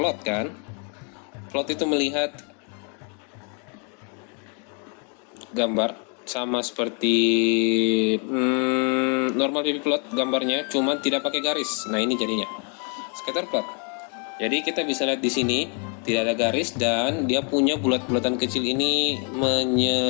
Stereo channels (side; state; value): right; quieter; 38.9 dB